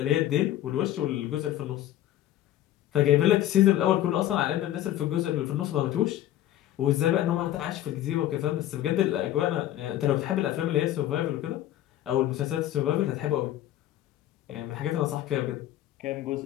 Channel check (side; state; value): right; quieter; 13.1 dB